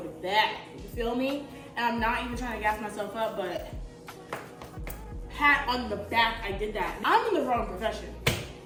to bed, you feel me? And I'm not even trying to gas myself up, but pat on the back, I did that. I'm in the wrong profession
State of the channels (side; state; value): both; identical; correlation 1.00